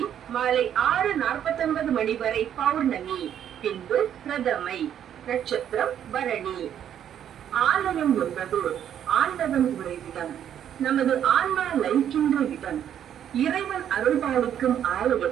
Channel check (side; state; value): left; quieter; 9.7 dB